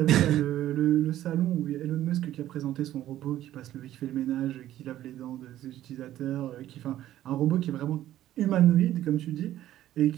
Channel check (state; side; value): quieter; left; 13.2 dB